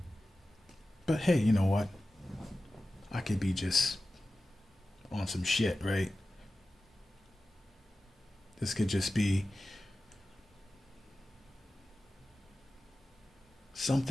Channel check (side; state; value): both; normal; correlation 0.95